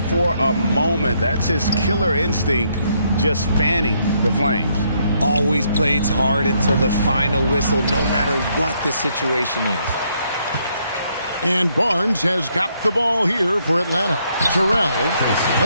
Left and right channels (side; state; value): both; inverted; correlation -0.73